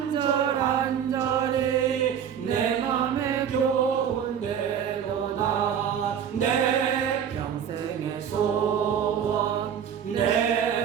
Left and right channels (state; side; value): quieter; left; 8.4 dB